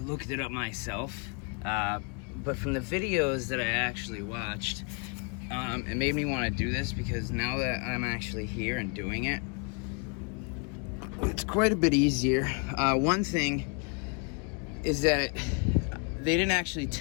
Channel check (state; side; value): quieter; right; 36.2 dB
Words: it up myself, but from the videos that I actually watched, it made me want to do this because now that I'm actually here and doing it, it's quite a bit easier. One thing is that they didn't actually